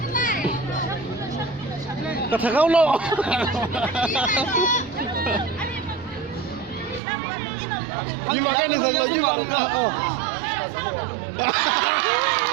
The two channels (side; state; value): left; drops out; at 7.0 s